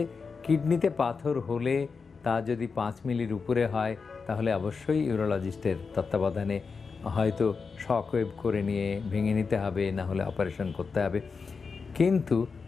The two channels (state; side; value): quieter; right; 5.0 dB